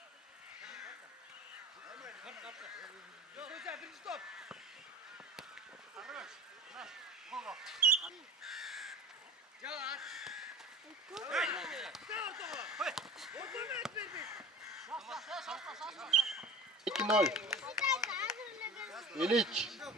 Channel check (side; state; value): both; normal; correlation 0.38